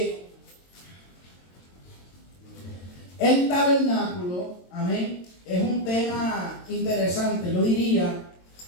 El tabernáculo, amén, es un tema interesante. Yo diría,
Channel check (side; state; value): right; late; 22 ms